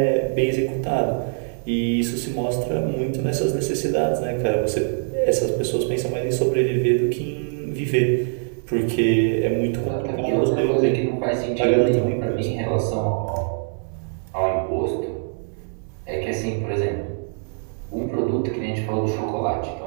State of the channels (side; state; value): left; silent; 63 dB below the other